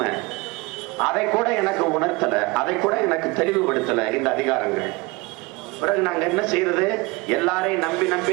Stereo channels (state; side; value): quieter; left; 25.0 dB